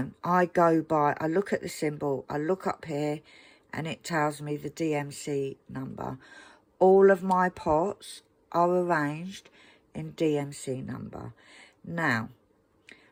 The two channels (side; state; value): both; identical; correlation 1.00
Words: I go by, I look at the symbol, I look up here, and it tells me the DMC number. All of my pots are arranged in DMC number. Now,